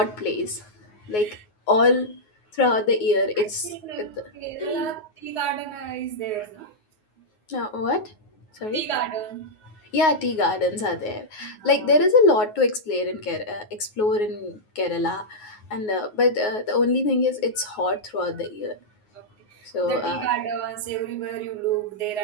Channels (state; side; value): late; right; 9.5 ms